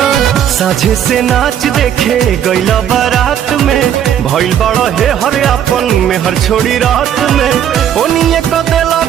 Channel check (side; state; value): left; quieter; 9.7 dB